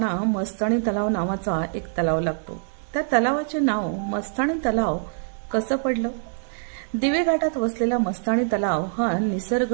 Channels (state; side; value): silent; left; 62 dB below the other